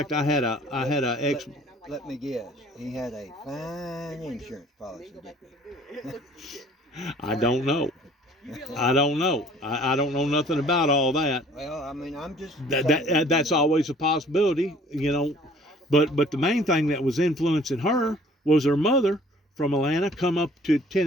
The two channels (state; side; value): normal; both; correlation 0.54